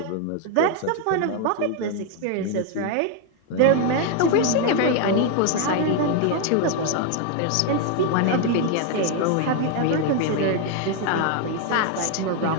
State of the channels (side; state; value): both; different; correlation 0.01